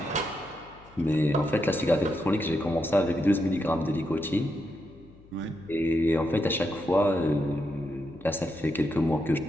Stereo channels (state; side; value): noise; left; hum, 25 dB below the sound